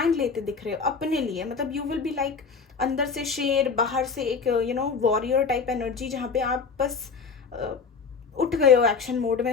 लेते दिख रहे हो अपने लिए. मतलब यू विल बी लाइक अंदर से शेर, बाहर से एक वॉरियर टाइप एनर्जी, जहाँ पे आप बस उठ गए हो, एक्शन मोड में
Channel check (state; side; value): quieter; right; 5.3 dB